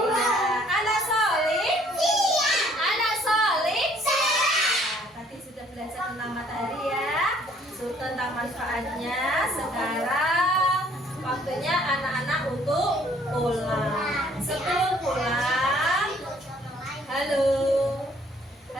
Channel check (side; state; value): both; normal; correlation 0.60